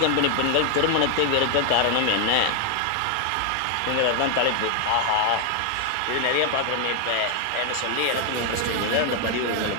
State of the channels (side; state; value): both; different; correlation 0.00